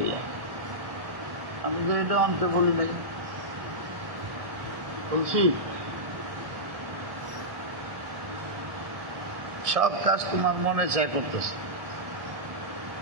যায়। আমি তো এটা অন্তে বলি নাই, বলছি সব কাজ তোমার মনে চায় করতেছে।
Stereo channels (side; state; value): left; late; 1.4 ms